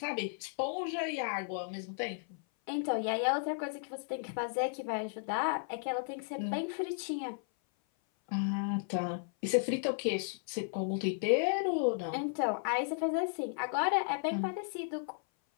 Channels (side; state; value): right; silent; 55 dB below the other